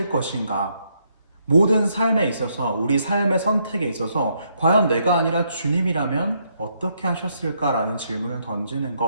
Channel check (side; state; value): both; inverted; correlation -0.74